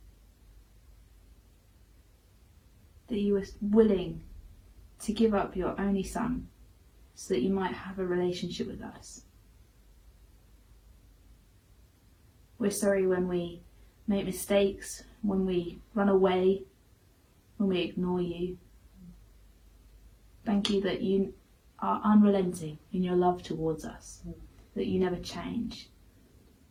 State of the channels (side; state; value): both; identical; correlation 1.00